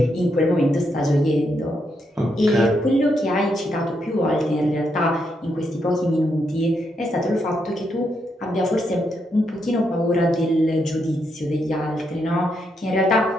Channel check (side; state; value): both; normal; correlation 0.80